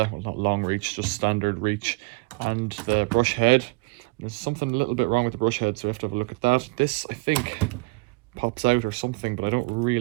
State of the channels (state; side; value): quieter; left; 27.2 dB